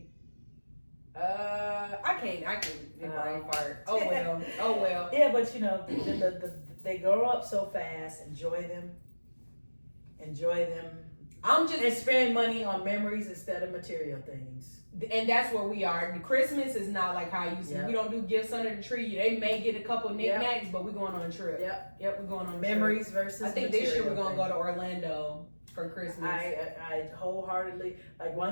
I can't brain fart. Oh well. Yeah, but they grow up so fast. Enjoy them. enjoy them. I'm just and spend money on memories instead of material things. And that's where we are. The Christmas is not like how you see. Yep. We don't do gifts under the tree. They may get a couple knickknacks, but we're going on a trip. Yep, we're going on a memories trip. versus. I think this year we're gonna go to Orlando for Christmas. I wholeheartedly, like,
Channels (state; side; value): inverted; both; correlation -1.00